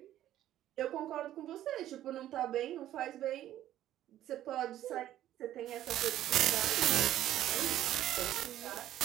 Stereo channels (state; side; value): quieter; left; 12.8 dB